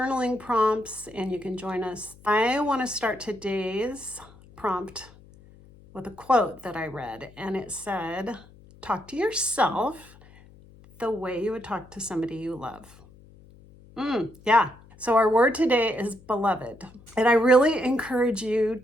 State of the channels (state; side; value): noise; left; hum, 24 dB below the sound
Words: prompts and you can join us. I want to start today's prompt with a quote that I read, and it said, talk to yourself the way you would talk to somebody you love. Yeah. So our word today is beloved. And I really encourage you